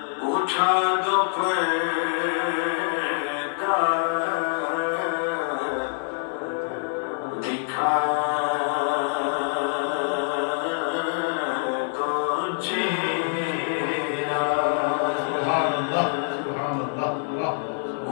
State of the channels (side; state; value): right; silent; digital silence